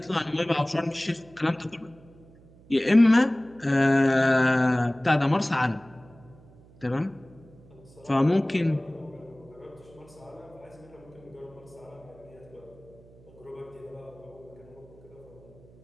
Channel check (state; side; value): noise; right; hum, 25 dB below the sound